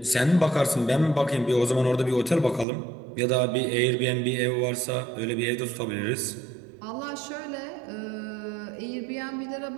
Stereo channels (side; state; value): left; drops out; at 2.7 s